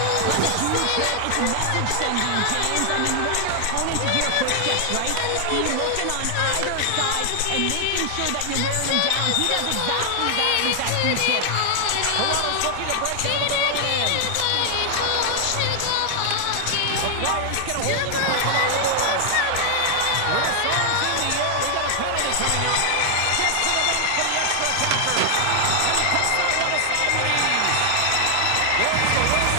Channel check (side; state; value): both; different; correlation 0.00